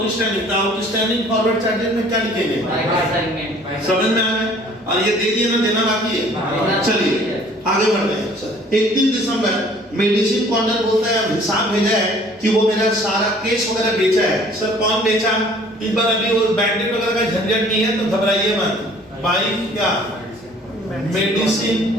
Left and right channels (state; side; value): normal; both; correlation 0.54